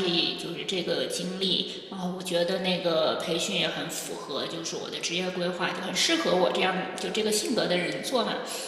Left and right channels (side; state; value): both; identical; correlation 1.00